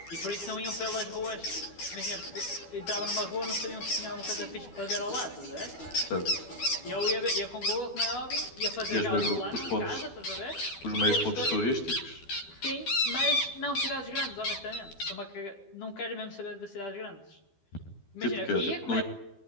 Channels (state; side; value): late; right; 12 ms